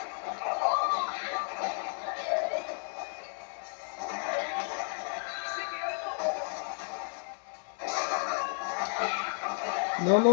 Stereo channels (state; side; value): silent; right; 56 dB below the other